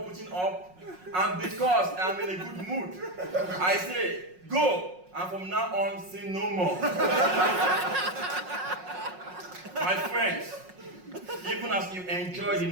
putting up, and because I'm in a good mood, I say, go, and from now on, sin no more. My friends, even as you enjoy the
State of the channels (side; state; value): left; late; 5.5 ms